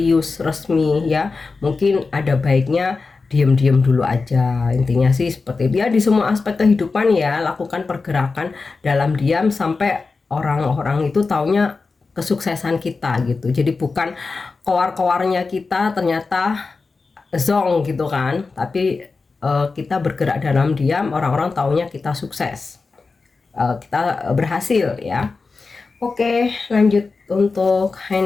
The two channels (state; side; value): quieter; right; 4.2 dB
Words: resmi ya, mungkin ada baiknya diam-diam dulu aja. Intinya sih seperti dia di semua aspek kehidupan ya, lakukan pergerakan dalam diam sampai orang-orang itu taunya kesuksesan kita gitu. Jadi bukan keluar-keluarnya kita ternyata zong gitu kan, tapi kita bergerak dalam diam, orang-orang taunya kita sukses, kita berhasil ya. Oke, lanjut untuk